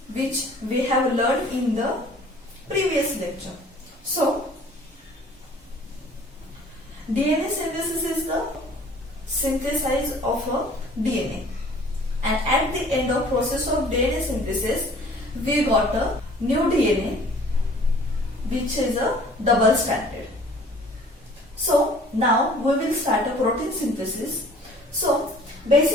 which we have learned in the previous lecture. So, DNA synthesis is the synthesis of a DNA, and at the end of process of DNA synthesis we got a new DNA which is a double stranded. So now we will start a protein synthesis. So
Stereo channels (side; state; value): both; normal; correlation 0.52